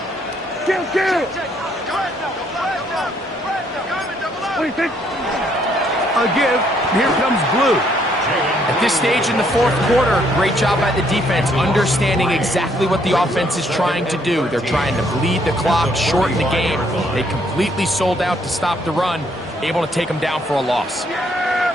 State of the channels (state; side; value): normal; both; correlation 0.69